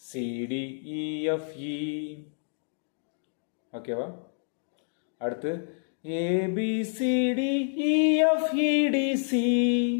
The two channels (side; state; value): right; silent; digital silence